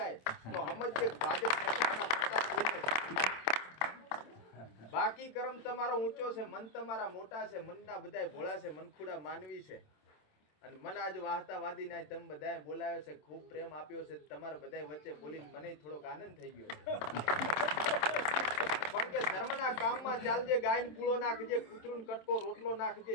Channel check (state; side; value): late; right; 27 ms